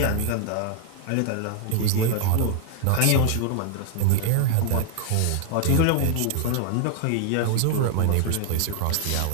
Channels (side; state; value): both; different; correlation 0.00